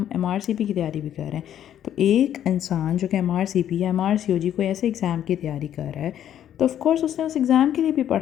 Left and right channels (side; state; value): right; quieter; 10.6 dB